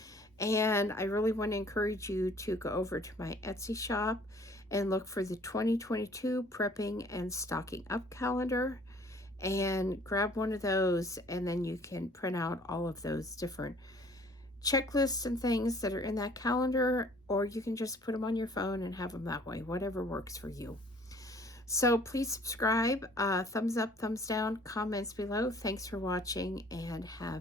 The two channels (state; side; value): normal; both; correlation 0.55